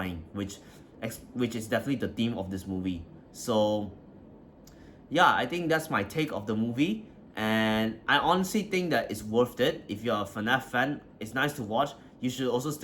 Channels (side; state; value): both; identical; correlation 1.00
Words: which is definitely the theme of this movie. So yeah, I think that's my take of the movie, and I honestly think that it's worth it. If you're a FNAF fan, it's nice to watch. You should also